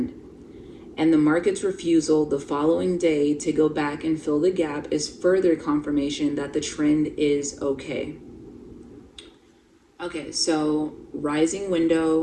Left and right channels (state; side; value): identical; both; correlation 1.00